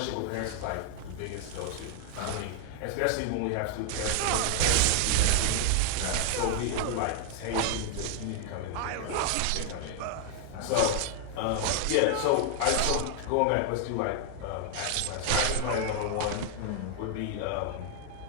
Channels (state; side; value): different; both; correlation 0.00